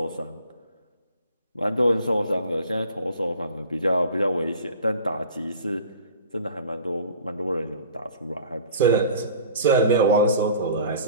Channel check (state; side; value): inverted; both; correlation -0.44